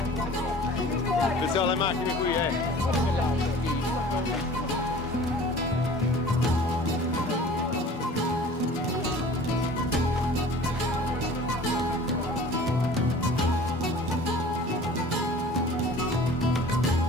Attenzione alle macchine qui,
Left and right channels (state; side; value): normal; both; correlation 0.45